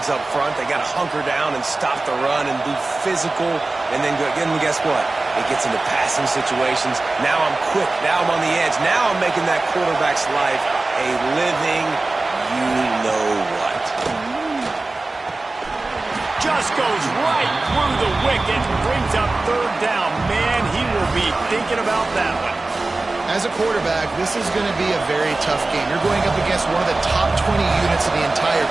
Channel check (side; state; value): left; quieter; 3.2 dB